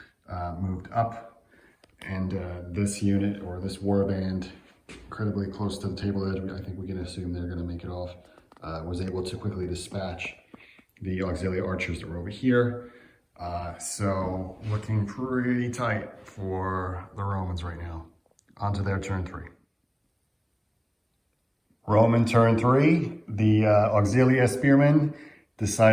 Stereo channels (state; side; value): identical; both; correlation 1.00